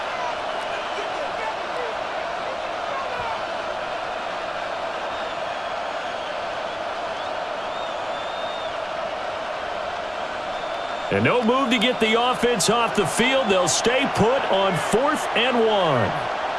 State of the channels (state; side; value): identical; both; correlation 1.00